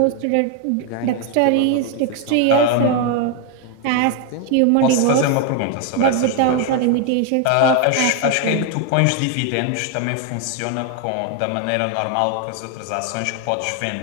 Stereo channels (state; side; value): different; both; correlation 0.01